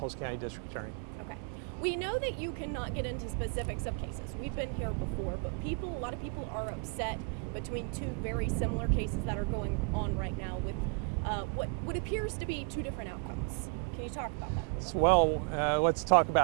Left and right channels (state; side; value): quieter; left; 38.5 dB